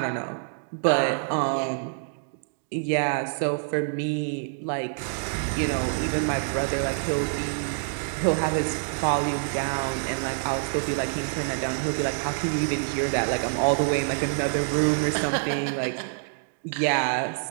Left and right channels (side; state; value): left; silent; digital silence